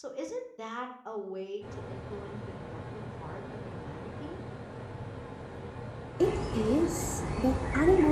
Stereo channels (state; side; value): identical; both; correlation 1.00